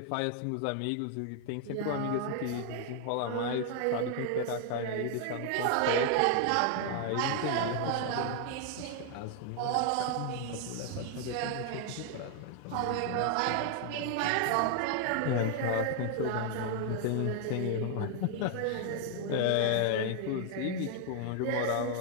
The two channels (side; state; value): both; different; correlation 0.00